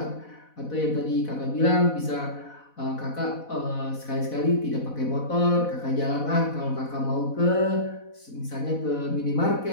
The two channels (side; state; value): right; late; 4.1 ms